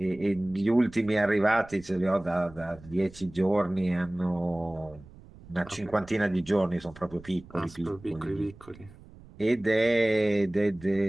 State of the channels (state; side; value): noise; right; rumble, 21 dB below the sound